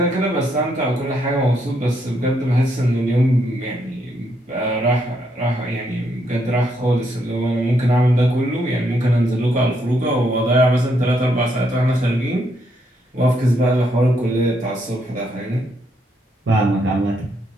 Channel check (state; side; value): normal; both; correlation 0.75